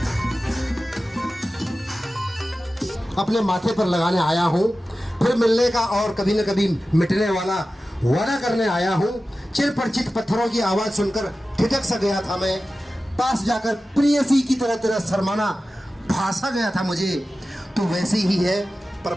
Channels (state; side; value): normal; both; correlation 0.95